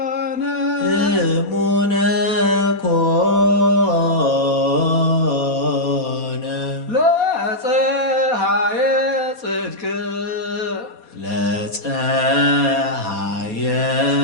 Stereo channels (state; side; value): late; left; 4.2 ms